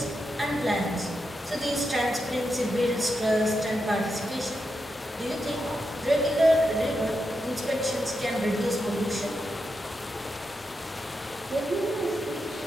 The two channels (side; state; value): both; normal; correlation 0.86